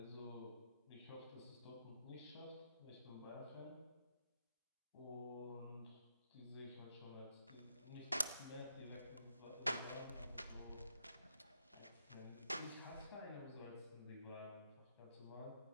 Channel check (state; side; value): inverted; both; correlation -0.79